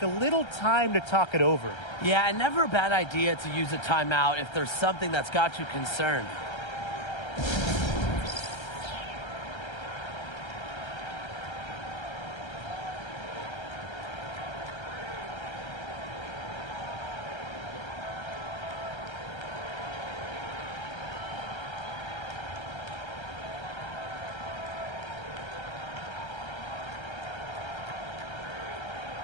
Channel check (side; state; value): right; late; 1.3 ms